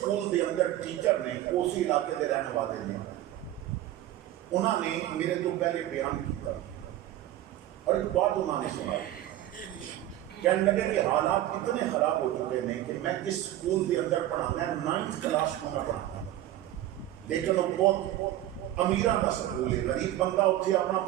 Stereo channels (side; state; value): left; quieter; 13.7 dB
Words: دے اندر ٹیچر نے اسی علاقے دے رہنے والے نے انہوں نے میرے تو پہلے بیان کیا اور ایک بات انہوں نے سنا. کہنے لگے کہ حالات اتنے خراب ہو چکے ہیں کہ میں اس سکول دے اندر پڑھانا ہے 9th کلاس کو میں پڑھانا لیکن وہ بہت امیران کا سکول ہے. غریب بندہ اتنے اپنا